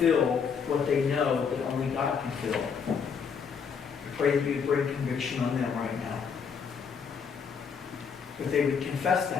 what they know that only God can fill, I pray that you would bring conviction on them right now. That they would confess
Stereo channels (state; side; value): quieter; right; 6.3 dB